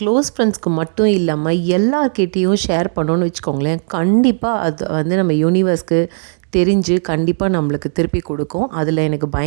ஃப்ரெண்ட்ஸ்க்கு மட்டும் இல்லாமல் எல்லார்கிட்டேயும் ஷேர் பண்ணோன்னு வச்சுக்கோங்களேன், கண்டிப்பாக அது வந்து நம்ம யூனிவர்ஸ்க்கு தெரிஞ்சு கண்டிப்பாக நம்மளுக்கு திருப்பி கொடுக்கும். அதில் எனக்கு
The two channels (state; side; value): silent; left; digital silence